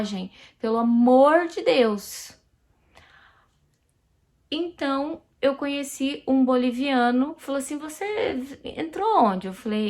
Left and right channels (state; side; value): identical; both; correlation 1.00